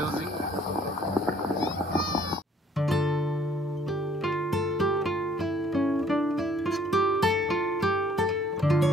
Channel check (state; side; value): normal; both; correlation 0.61